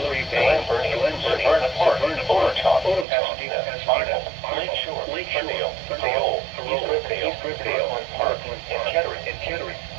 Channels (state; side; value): drops out; left; at 3.1 s